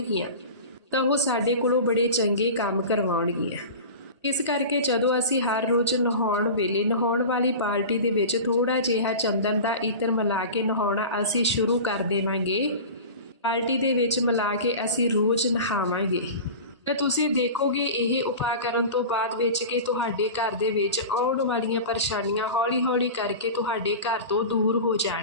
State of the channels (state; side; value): inverted; both; correlation -0.33